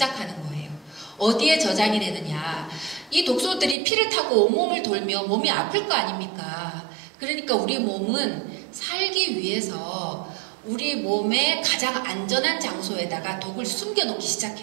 거예요. 어디에 저장이 되느냐? 이 독소들이 피를 타고 온몸을 돌며 몸이 아플 거 아닙니까? 그러니까 우리 몸은 살기 위해서 우리 몸의 가장 안전한 장소에다가 독을 숨겨놓기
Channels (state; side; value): drops out; left; at 3.8 s